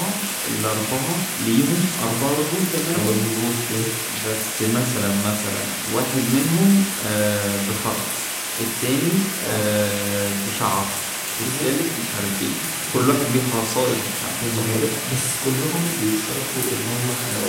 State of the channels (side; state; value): both; identical; correlation 1.00